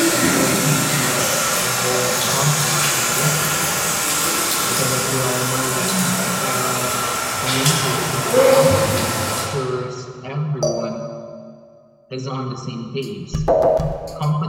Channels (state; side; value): identical; both; correlation 1.00